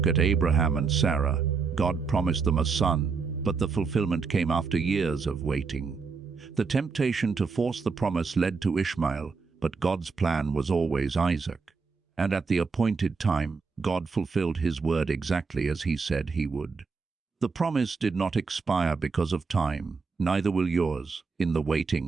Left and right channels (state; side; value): quieter; left; 4.9 dB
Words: at Abraham and Sarah. God promised them a son, but the fulfillment came after years of waiting. The temptation to force the promise led to Ishmael, But God's plan was always Isaac. And at the appointed time, God fulfilled his word exactly as he said he would. The promise did not expire because of time, neither will yours. In the